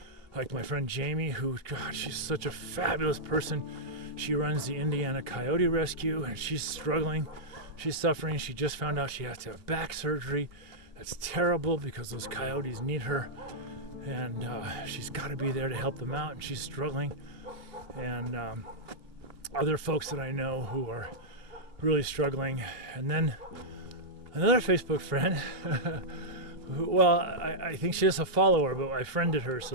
like my friend Jamie, who, God, she's such a fabulous person. She runs the Indiana Coyote Rescue, and she's struggling. She's suffering. She just found out she has to have back surgery. That's terrible because those coyotes need her, and she's got to be there to help them out, and she's struggling. And other folks that I know who are really struggling. And then another Facebook friend who, I think she is a follower, but I friended her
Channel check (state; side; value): late; left; 2.8 ms